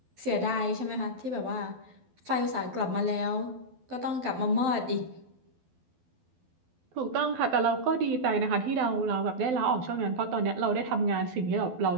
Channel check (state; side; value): late; left; 12 ms